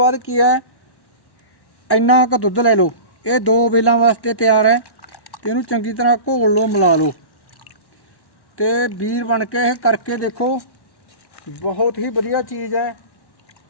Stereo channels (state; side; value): late; right; 1.1 ms